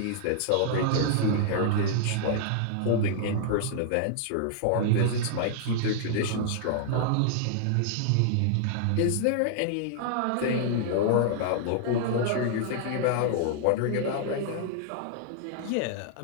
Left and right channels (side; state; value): both; different; correlation -0.01